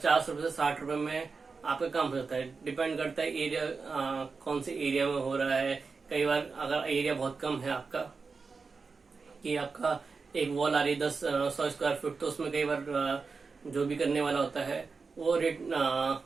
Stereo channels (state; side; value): quieter; left; 4.7 dB